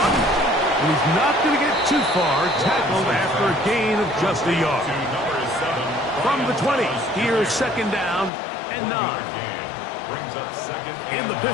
And he's not going to get too far. Tackled after a gain of just a yard. From the 20, here's 2nd down and 9. In the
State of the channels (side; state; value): right; drops out; at 8.3 s